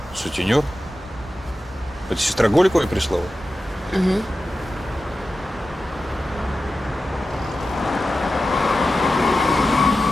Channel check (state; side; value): normal; both; correlation 0.93